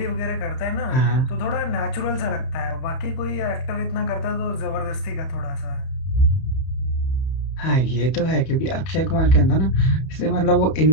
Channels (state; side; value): late; right; 31 ms